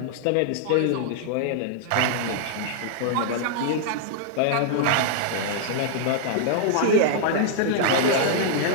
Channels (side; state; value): both; different; correlation -0.01